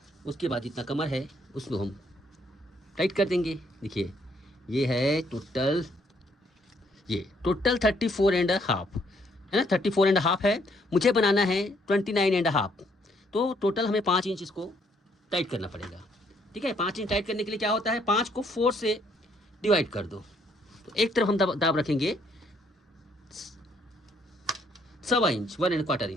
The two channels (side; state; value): both; normal; correlation 0.68